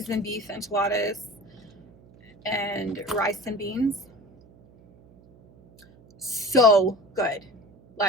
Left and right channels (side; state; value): right; noise; hum, 26 dB below the sound